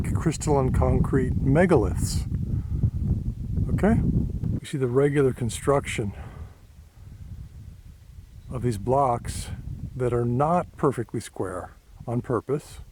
crystalline concrete megaliths. Okay? We see the regular construction of these blocks that are not perfectly square on purpose,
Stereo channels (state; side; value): identical; both; correlation 1.00